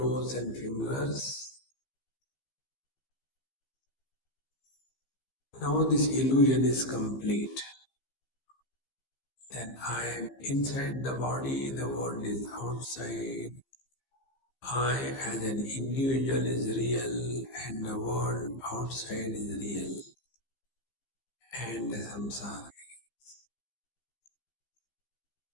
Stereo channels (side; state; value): right; late; 15 ms